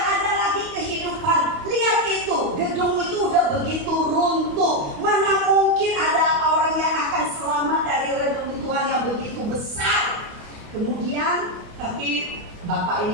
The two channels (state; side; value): late; left; 28 ms